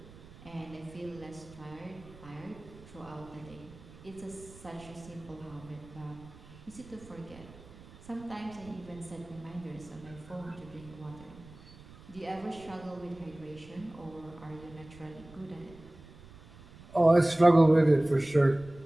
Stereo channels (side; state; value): right; noise; rumble, 20 dB below the sound